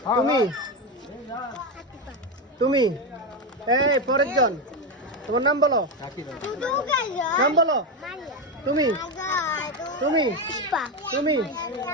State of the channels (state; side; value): normal; both; correlation 0.11